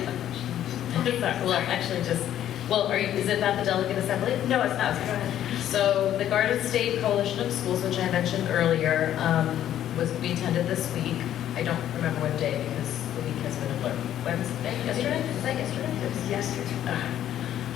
Well, actually, is it not the delegate assembly? No, it's not. Go ahead. So the Garden State Coalition of Schools, which I mentioned earlier, we attended this week. I don't remember what day because the week has been a blur. Wednesday? Yesterday? Was that yesterday? It was yesterday.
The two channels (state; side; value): quieter; right; 11.4 dB